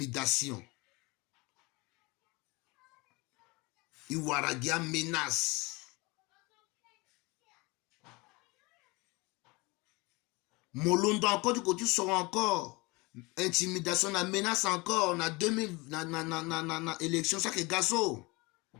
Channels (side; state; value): right; quieter; 25.0 dB